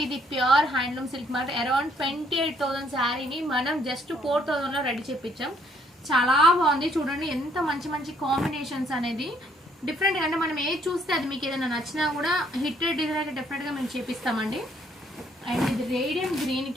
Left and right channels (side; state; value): both; normal; correlation 0.67